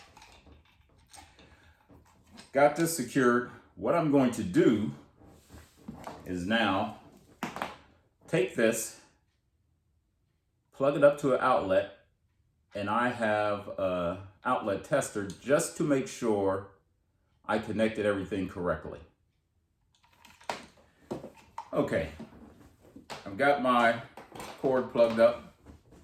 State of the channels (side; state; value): both; identical; correlation 1.00